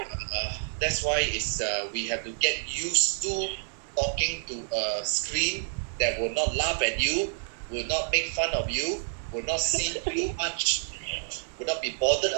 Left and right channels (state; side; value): silent; left; 59 dB below the other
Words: that's why it's we have to get used to talking to a screen that will not laugh at you, will not make fun of you, will not see you much, will not be bothered